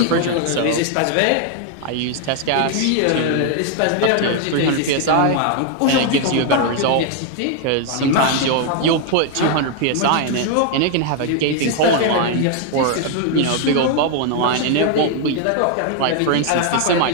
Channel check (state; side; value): different; both; correlation 0.00